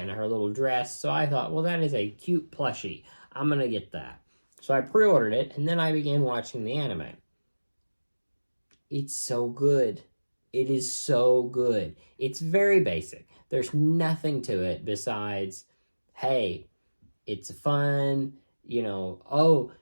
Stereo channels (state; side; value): inverted; both; correlation -1.00